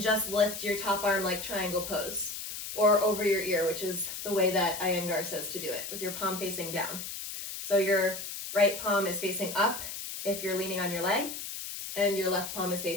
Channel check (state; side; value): noise; left; hiss, 7 dB below the sound